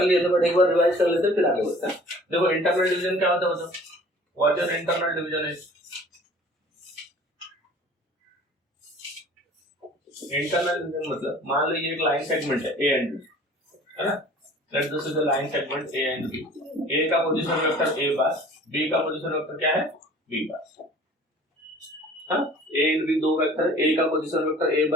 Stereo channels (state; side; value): normal; both; correlation 0.48